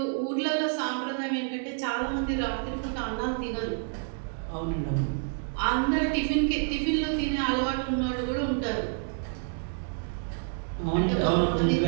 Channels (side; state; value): left; silent; digital silence